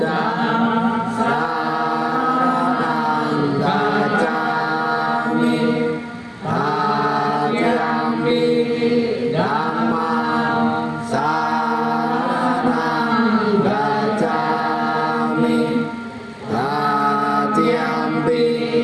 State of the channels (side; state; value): both; identical; correlation 1.00